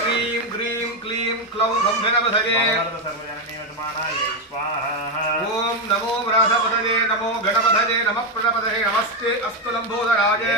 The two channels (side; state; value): both; normal; correlation 0.07